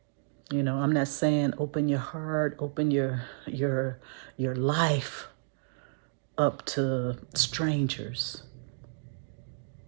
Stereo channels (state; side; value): silent; left; digital silence